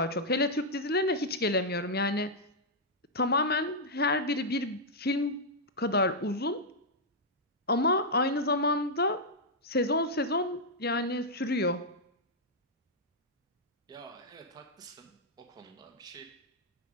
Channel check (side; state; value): both; normal; correlation -0.06